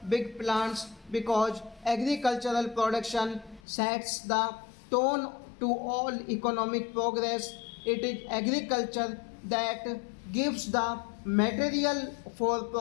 big plants, because agricultural production sets the tone to all economic progress. It is agriculture that gives the material for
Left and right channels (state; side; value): drops out; right; at 3.6 s